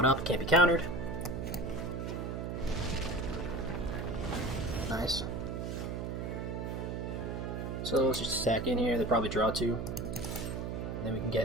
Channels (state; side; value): noise; right; hum, 4 dB below the sound